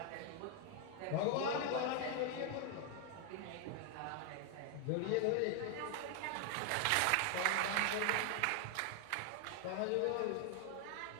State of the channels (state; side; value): different; both; correlation 0.00